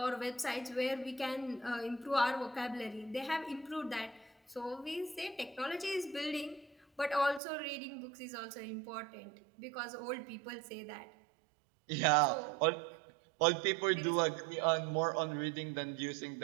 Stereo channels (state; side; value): drops out; left; at 7.4 s